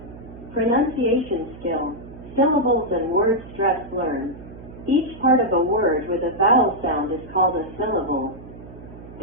Pronunciation skill. Syllables and word stress learned. Each part of a word with a vowel sound is called a syllable.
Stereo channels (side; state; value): right; noise; hum, 17 dB below the sound